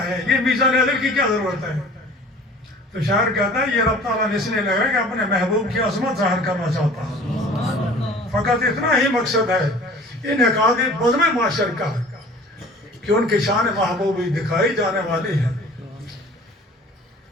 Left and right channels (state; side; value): normal; both; correlation 0.46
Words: ہے، یہ میزان عدل کی کیا ضرورت ہے؟ تو شاعر کہتا ہے یہ رب تعالیٰ نے اس لیے لگا کہ اپنے محبوب کی عظمت ظاہر کرنا چاہتا ہے. فقط اتنا ہی مقصد ہے انعقاد بزم معاشر کا کہ ان کی شان محبوبی دکھائی جانے والی ہے.